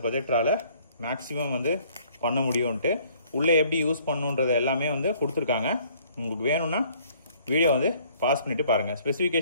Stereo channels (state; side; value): inverted; both; correlation -0.59